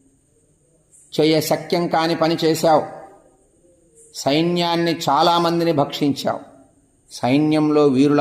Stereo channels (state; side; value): identical; both; correlation 1.00